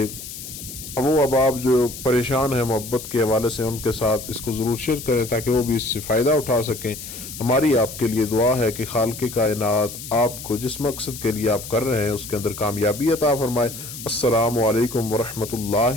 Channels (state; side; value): noise; left; hiss, 11 dB below the sound